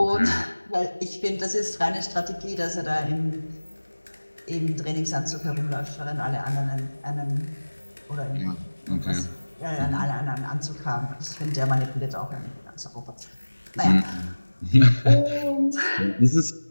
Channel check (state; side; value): inverted; both; correlation -1.00